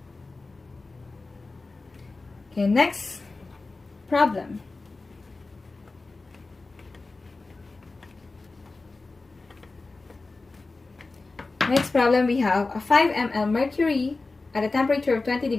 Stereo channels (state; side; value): quieter; right; 3.5 dB